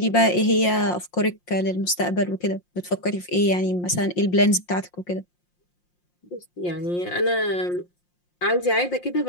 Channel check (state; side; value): late; right; 5.7 ms